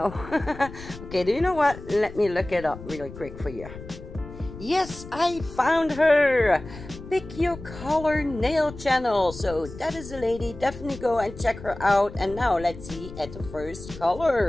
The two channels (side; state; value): left; noise; rumble, 14 dB below the sound